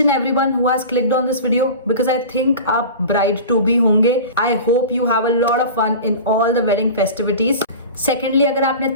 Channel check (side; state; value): both; inverted; correlation -0.34